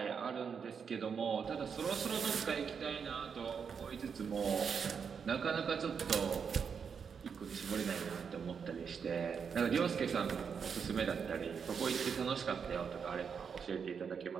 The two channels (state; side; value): quieter; left; 6.5 dB